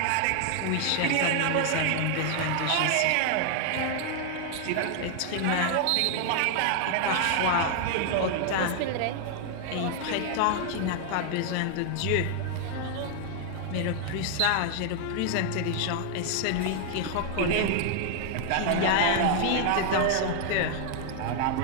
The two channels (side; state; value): both; different; correlation 0.00